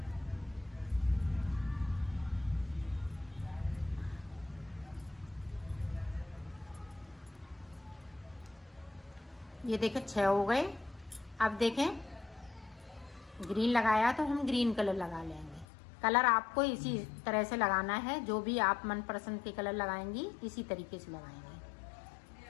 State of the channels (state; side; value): drops out; right; at 15.7 s